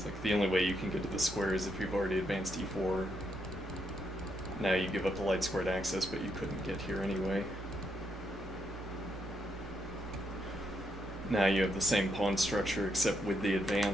like the only way you can get to the square is if you've already advanced e4. Now you give up the light squared access, but you couldn't get here anyway. Now you have the same pawn structure except with the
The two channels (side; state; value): both; normal; correlation 0.78